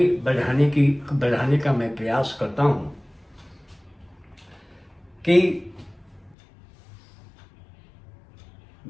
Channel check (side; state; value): right; drops out; at 6.4 s